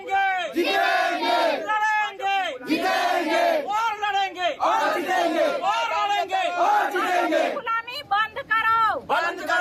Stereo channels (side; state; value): both; identical; correlation 1.00